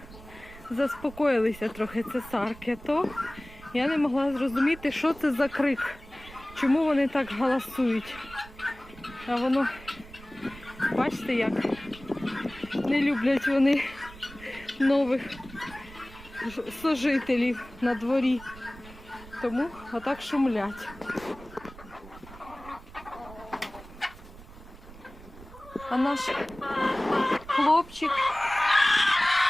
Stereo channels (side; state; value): right; noise; rumble, 18 dB below the sound